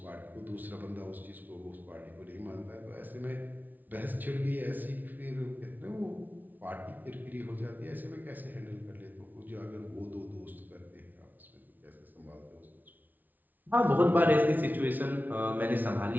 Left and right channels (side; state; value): left; late; 0.082 ms